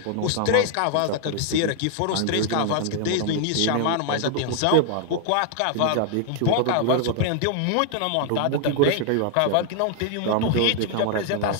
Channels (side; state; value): both; different; correlation 0.00